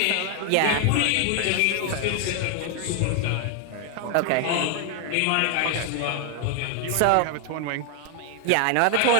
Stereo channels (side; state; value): both; different; correlation 0.00